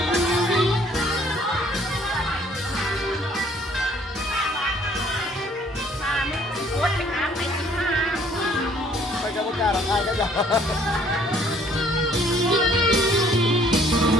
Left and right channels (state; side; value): normal; both; correlation 0.60